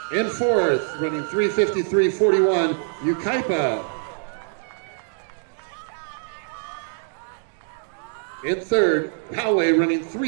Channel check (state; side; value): silent; left; 62 dB below the other